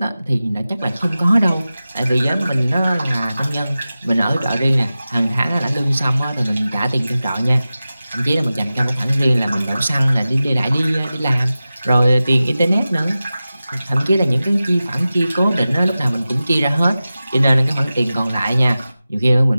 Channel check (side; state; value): both; inverted; correlation -0.95